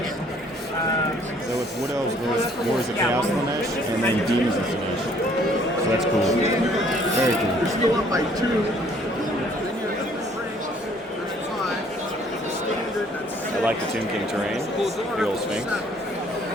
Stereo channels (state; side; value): normal; both; correlation 0.60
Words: So with Wood Elves goes Wars of Chaos Slanesh and then Demons of Slanesh. So that's cool. Very cool. You're still up by 2. I like the Tomb King terrain. The old Sphinx.